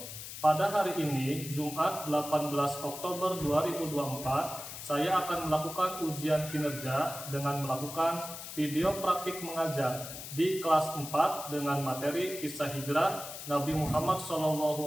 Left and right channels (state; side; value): noise; left; hiss, 10 dB below the sound